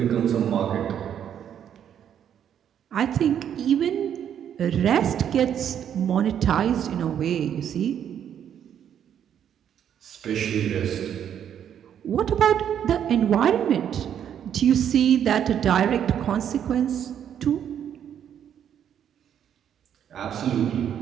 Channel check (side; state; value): left; quieter; 9.2 dB